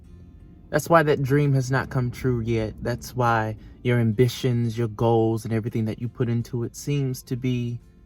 That's why that dream has not come true yet. That's why your ambitions, your goals, and everything that you put into it seems to be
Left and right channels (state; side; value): identical; both; correlation 1.00